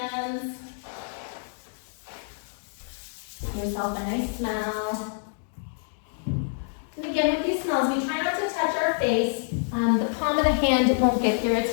Give yourself a nice smell. And again, with these smells, we try not to touch our face. The palm of the hand won't get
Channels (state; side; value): silent; right; digital silence